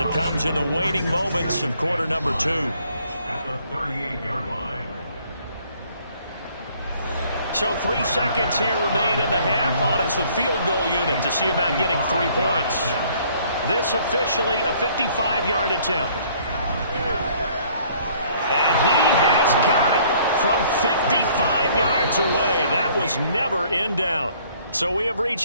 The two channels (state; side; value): inverted; both; correlation -0.60